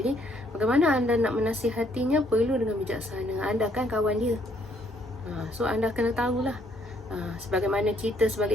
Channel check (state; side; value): normal; both; correlation 0.68